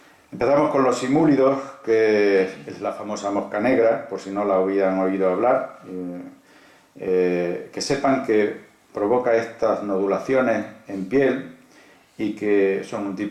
Empezamos con los simúlidos, que es la famosa mosca negra, por si no la habían oído hablar. Que sepan que provoca estas nodulaciones en piel y que son un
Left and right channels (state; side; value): identical; both; correlation 1.00